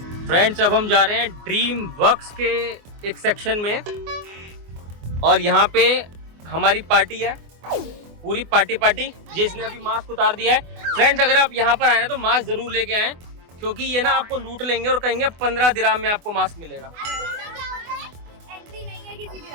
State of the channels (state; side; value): late; left; 24 ms